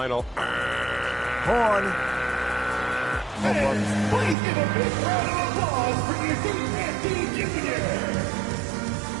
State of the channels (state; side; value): drops out; left; at 4.4 s